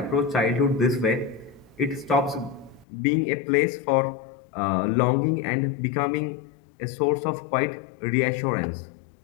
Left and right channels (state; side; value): drops out; right; at 2.9 s